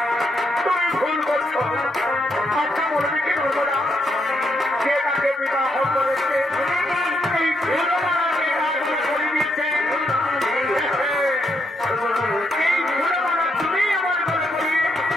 তুমি ভুল করছো। আচ্ছা বলবি কি নর্মদা, যে তাকে বিবাহ করেছে এই ভুলমানাকে তাকে করে দিচ্ছে, এই ভুলমানা তুমি আমার গলে করিয়ে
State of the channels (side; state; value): both; normal; correlation 0.78